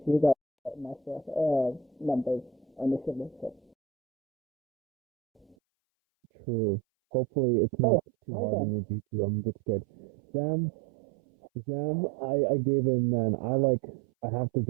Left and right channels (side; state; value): left; drops out; at 5.6 s